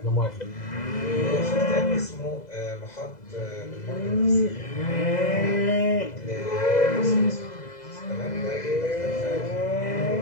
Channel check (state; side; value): late; right; 2.0 ms